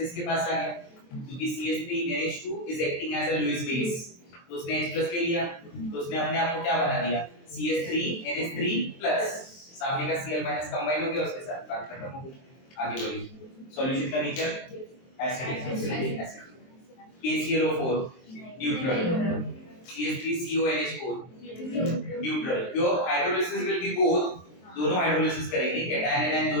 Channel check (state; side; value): late; right; 23 ms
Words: इसके पास आ गया, क्योंकि CH3NH2 is acting as a Lewis base, तो उसने H प्लस ले लिया, तो उसने अपने आप को क्या बना दिया? CH3NH3 प्लस, सामने का Cl माइनस कंबाइन हो गया उसके साथ, बात खत्म हो गई। आगे बढ़िए। सॉल्यूशन का nature acidic. KClO4 neutral. CH3CONH4 neutral. क्यों? हाइड्रोलिसिस विल बी बोथ, दोनों हाइड्रोलिसिस करेंगे, कैटायन एनायन